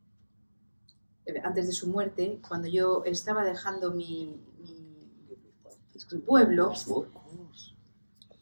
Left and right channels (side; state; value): both; inverted; correlation -1.00